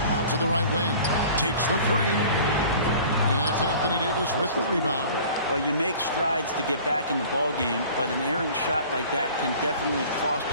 Out to the right wing. Takes the 3. And it's Anthony Davis with the rebound. Well, you make strides to get back in the ball game, but an errant shot like that can definitely cost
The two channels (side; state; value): both; inverted; correlation -0.45